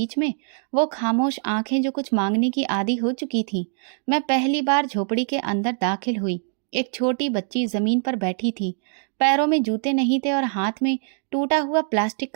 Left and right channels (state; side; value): silent; left; 63 dB below the other